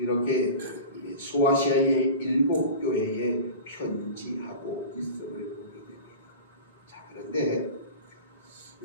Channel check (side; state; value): both; inverted; correlation -0.33